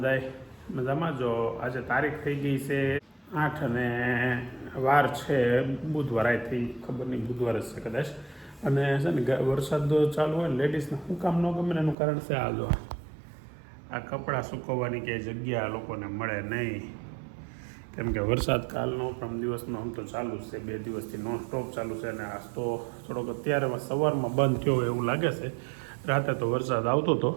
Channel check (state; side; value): drops out; left; at 12.0 s